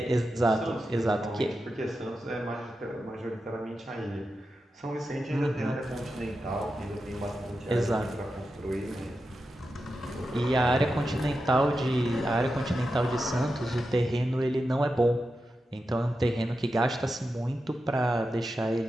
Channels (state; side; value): normal; both; correlation 0.90